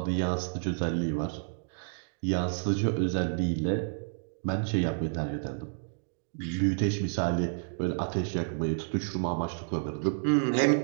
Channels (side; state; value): left; silent; digital silence